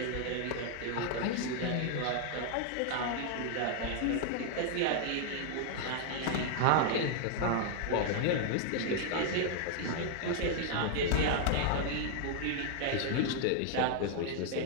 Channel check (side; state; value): both; different; correlation 0.00